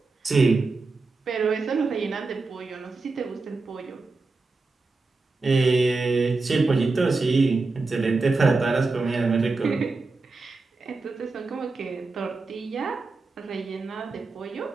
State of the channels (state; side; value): quieter; left; 3.7 dB